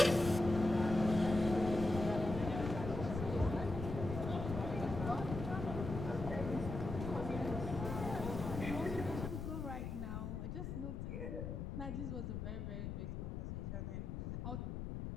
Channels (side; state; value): left; noise; rumble, 5 dB below the sound